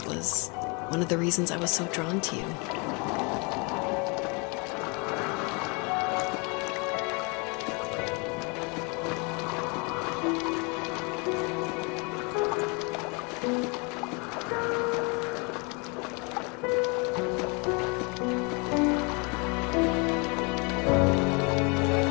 was one of the reasons I was so drawn to you.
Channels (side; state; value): right; quieter; 31.6 dB